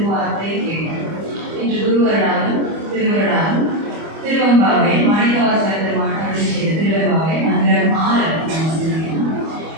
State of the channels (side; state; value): left; late; 25 ms